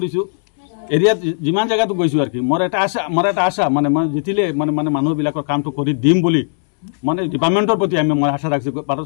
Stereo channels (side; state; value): right; silent; 68 dB below the other